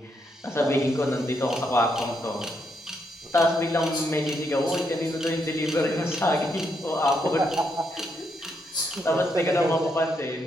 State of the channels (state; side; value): normal; both; correlation 0.78